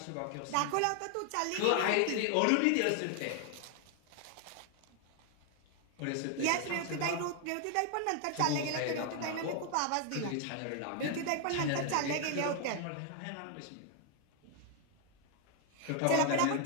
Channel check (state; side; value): different; both; correlation 0.00